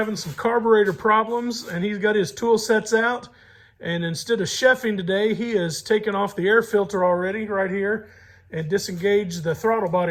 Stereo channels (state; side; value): identical; both; correlation 1.00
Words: some carburetor problems and he's got his tool sets out. And instead of chefing today, he has taken off the air filter already right here and disengaged the throttle